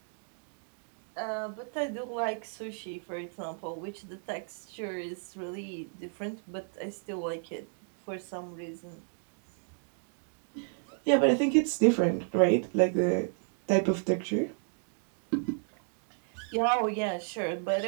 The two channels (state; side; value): silent; left; 56 dB below the other